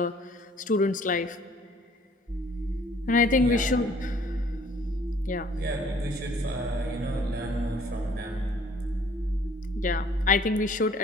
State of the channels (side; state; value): both; normal; correlation 0.57